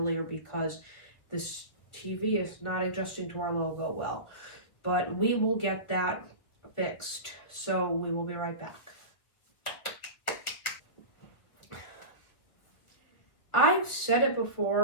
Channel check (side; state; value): right; late; 1.7 ms